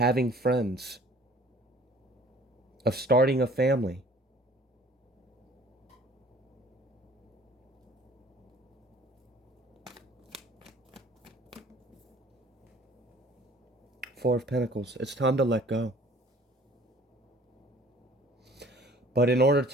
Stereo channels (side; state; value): both; normal; correlation 0.52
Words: friends, of starting a family. Four of Pentacles. It's time to let go. But in order